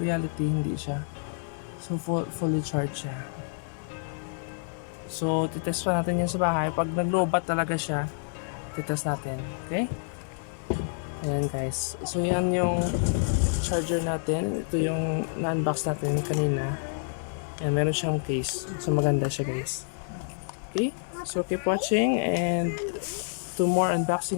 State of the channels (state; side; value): silent; right; 59 dB below the other